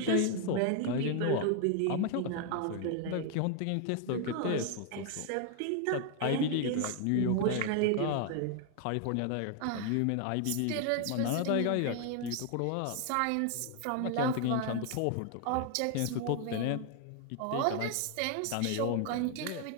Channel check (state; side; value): different; both; correlation 0.00